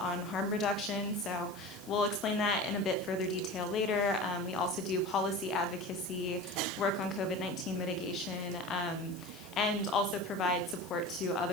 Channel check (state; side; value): noise; left; hiss, 21 dB below the sound